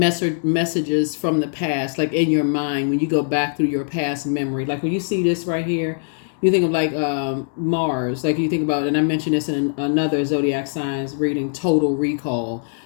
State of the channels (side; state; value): right; silent; digital silence